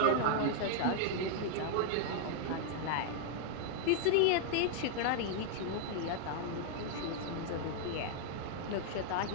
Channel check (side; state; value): both; different; correlation 0.00